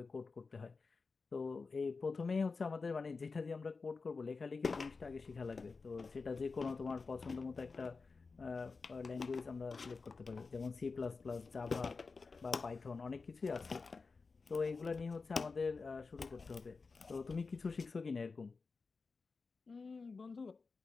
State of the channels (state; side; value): quieter; right; 4.4 dB